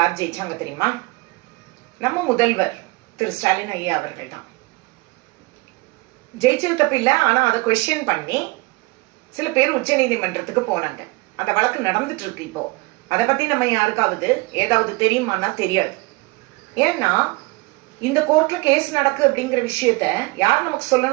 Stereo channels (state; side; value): quieter; left; 25.1 dB